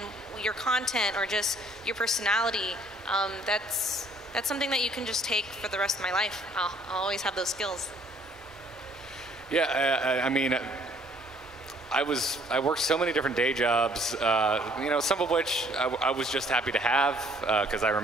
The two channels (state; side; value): normal; both; correlation 0.60